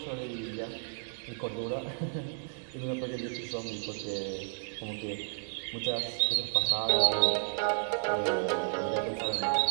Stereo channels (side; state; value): left; silent; 56 dB below the other